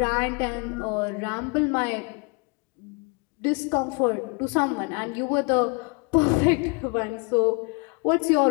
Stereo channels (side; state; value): right; quieter; 32.7 dB